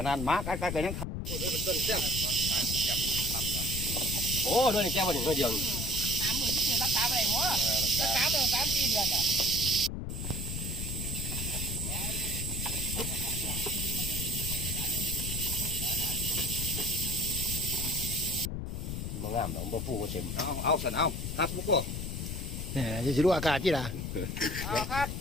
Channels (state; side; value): noise; left; rumble, 4 dB below the sound